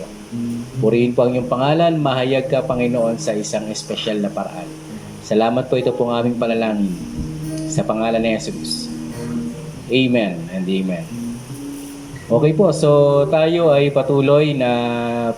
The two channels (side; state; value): both; identical; correlation 1.00